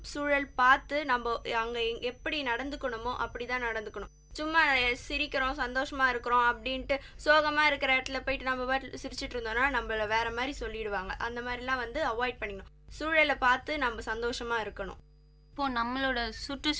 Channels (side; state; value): both; identical; correlation 1.00